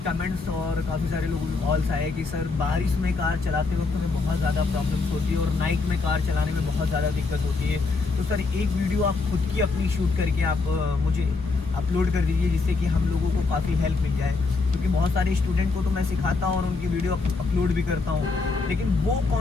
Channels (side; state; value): right; quieter; 4.0 dB